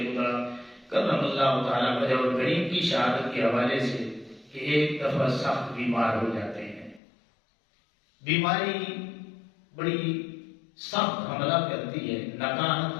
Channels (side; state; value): right; drops out; at 7.0 s